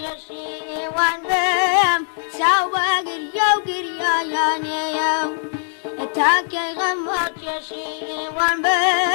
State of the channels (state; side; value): silent; right; 64 dB below the other